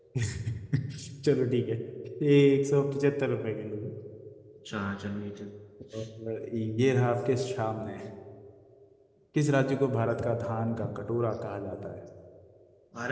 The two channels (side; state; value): both; identical; correlation 1.00